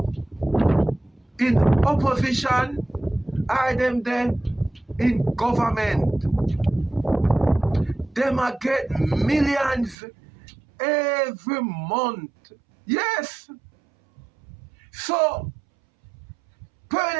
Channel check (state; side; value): drops out; left; at 10.0 s